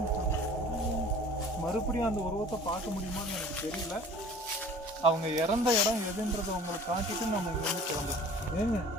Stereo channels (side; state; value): both; normal; correlation 0.46